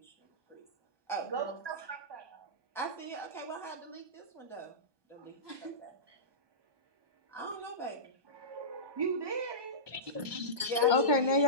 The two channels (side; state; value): left; late; 1.2 ms